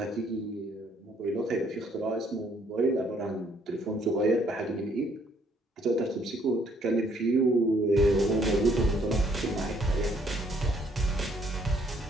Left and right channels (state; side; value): normal; both; correlation 0.66